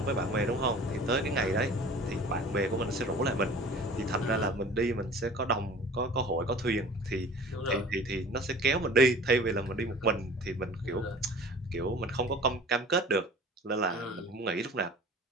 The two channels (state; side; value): normal; both; correlation 0.44